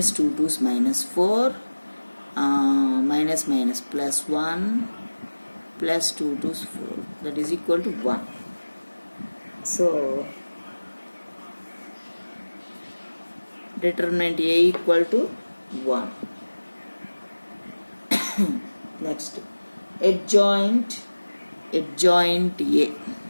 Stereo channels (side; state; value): both; inverted; correlation -1.00